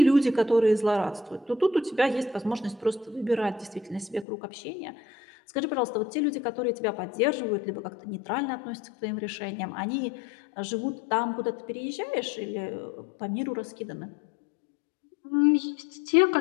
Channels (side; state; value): right; drops out; at 4.2 s